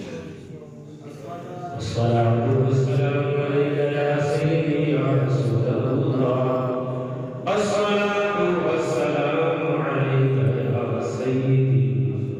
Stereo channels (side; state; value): both; identical; correlation 1.00